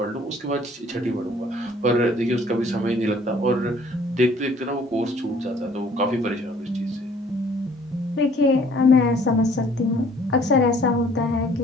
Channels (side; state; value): both; normal; correlation 0.56